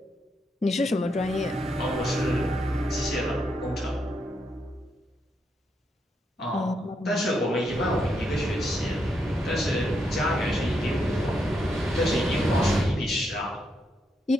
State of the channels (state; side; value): normal; both; correlation 0.80